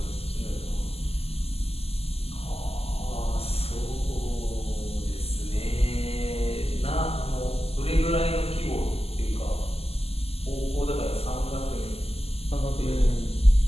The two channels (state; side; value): late; right; 0.29 ms